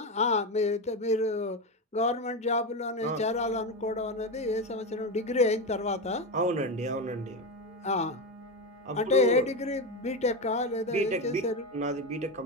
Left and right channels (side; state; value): both; normal; correlation 0.15